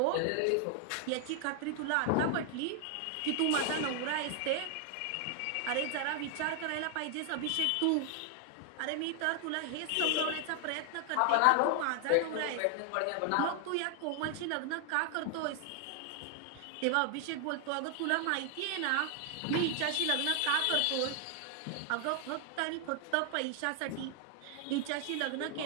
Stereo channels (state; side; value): different; both; correlation 0.00